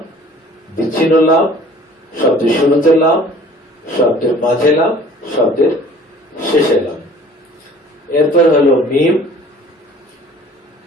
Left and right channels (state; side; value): normal; both; correlation 0.50